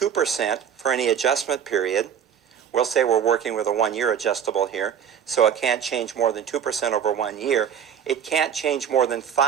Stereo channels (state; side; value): quieter; left; 8.4 dB